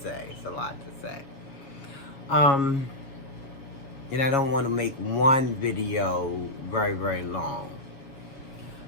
say. It's a lot to say. Um, and I don't want to make one video very, very long.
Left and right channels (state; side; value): late; right; 7.0 ms